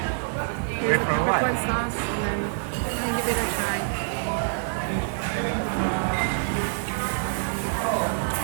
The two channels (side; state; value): left; silent; digital silence